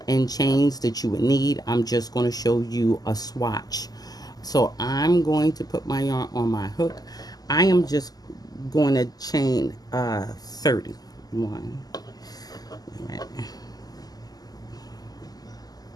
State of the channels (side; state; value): right; late; 0.18 ms